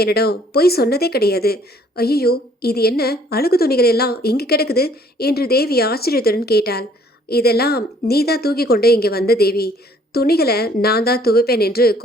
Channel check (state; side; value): normal; both; correlation 0.60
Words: என்னிடம் பொய் சொன்னதே கிடையாது. ஐயோ, இது என்ன அழுகு துணிகள் எல்லாம் இங்கு கிடக்குது என்று தேவி ஆச்சரியத்துடன் கேட்டாள். இதெல்லாம் நீ தான் தூக்கி கொண்டு இங்கே வந்த தேவி. துணிகளை நான் தான் துவைப்பேன் என்று